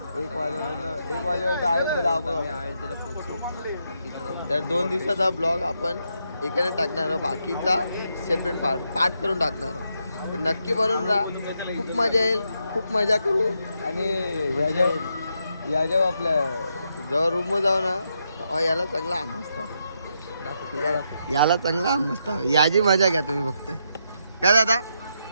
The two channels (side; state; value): both; inverted; correlation -0.81